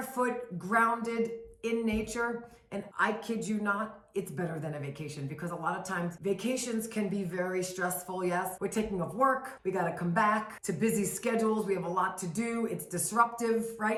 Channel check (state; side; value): identical; both; correlation 1.00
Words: grounded in nature. And I kid you not, it's better than a vacation because a lot of times vacations can be very stressful. Yes, we're taking off work. We got to come back to busy schedules. We have a lot to do. It's disruptive,